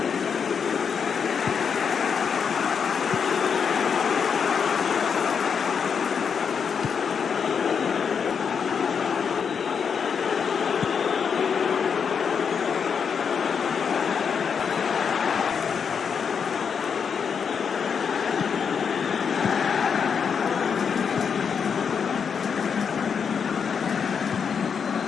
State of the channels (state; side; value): quieter; right; 6.6 dB